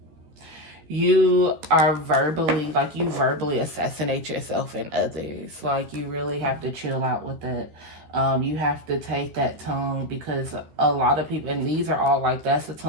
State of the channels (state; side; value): late; left; 13 ms